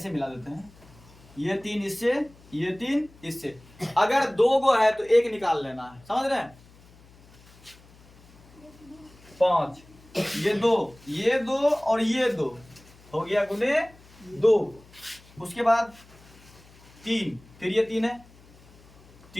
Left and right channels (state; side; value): noise; left; hum, 25 dB below the sound